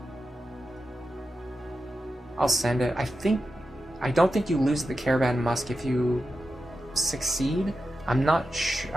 I'll send it. I don't think you lose the Caravan Musk if you succeed. I'm not sure.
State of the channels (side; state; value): both; normal; correlation 0.90